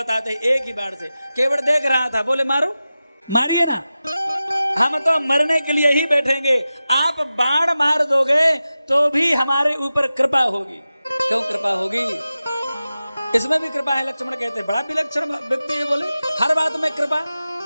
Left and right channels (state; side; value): inverted; both; correlation -0.94